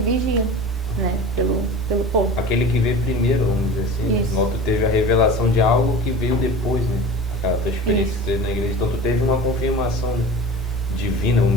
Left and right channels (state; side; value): normal; both; correlation 0.35